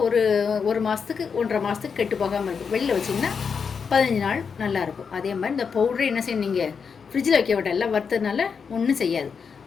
ஒரு மாதத்துக்கு 1.5 மாதத்துக்கு கெட்டு போகாமல் இருக்கும். வெளியில் வச்சிங்கன்னா 15 நாள் நல்லாயிருக்கும். அதே மாதிரி இந்த பவுடரை என்ன செய்யணும், நீங்கள் ஃப்ரிட்ஜில் வைக்க விட்டால் எல்லாம் வறுத்ததுனால ஒன்றும் செய்யாது.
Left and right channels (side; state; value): right; quieter; 6.0 dB